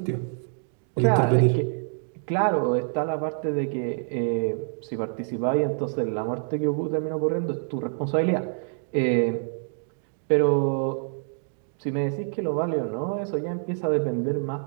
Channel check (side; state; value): left; silent; digital silence